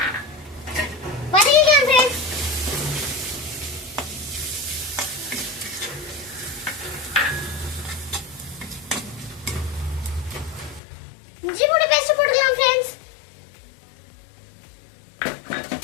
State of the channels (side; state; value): right; drops out; at 10.8 s